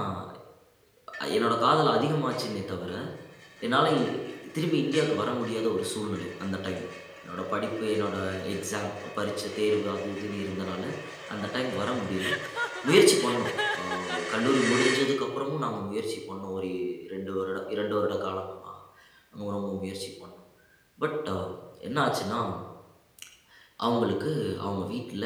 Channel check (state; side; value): identical; both; correlation 1.00